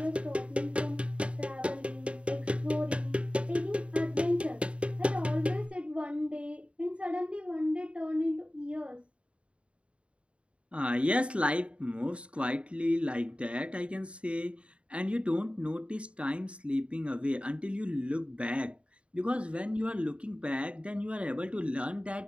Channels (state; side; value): late; left; 0.060 ms